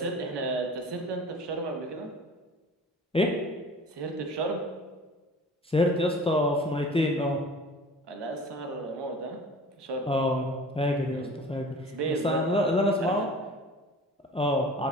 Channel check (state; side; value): normal; both; correlation 0.43